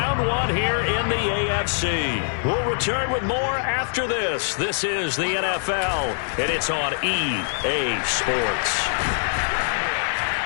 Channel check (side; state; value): right; silent; 62 dB below the other